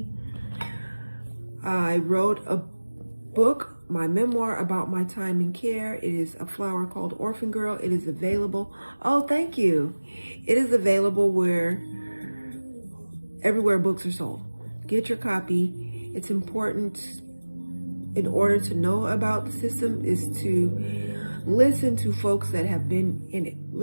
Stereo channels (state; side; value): inverted; both; correlation -1.00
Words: I wrote a book, my memoir about my time in care. It is A Flower Called Orphan Girl. It is available. Oh, thank you. It is available everywhere books are sold. Get your copy. It's important in order to know about the system is to listen to folks that have been in it.